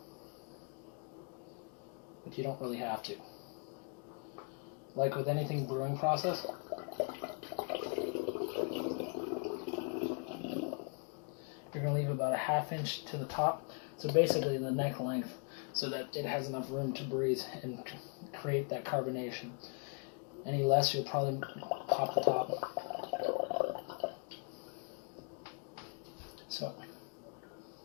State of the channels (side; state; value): right; quieter; 39.3 dB